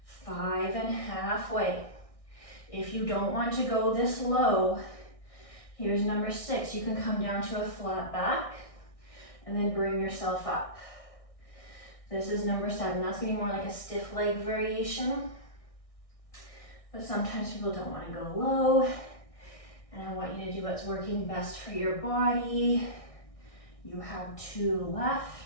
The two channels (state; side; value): late; right; 1.6 ms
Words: 5 and halfway. If you don't want to go this low, here's number 6. You can come down to a flat back and then bring yourself up. This is number 7. That's gonna be more like a stiff leg variation. But sometimes people don't want to go low, and I want you to do what's working best for your body. You have 2